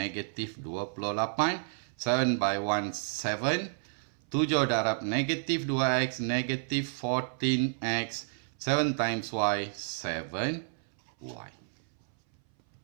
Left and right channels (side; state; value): left; silent; 57 dB below the other